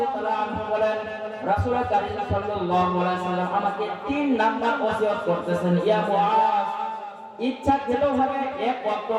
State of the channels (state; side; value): identical; both; correlation 1.00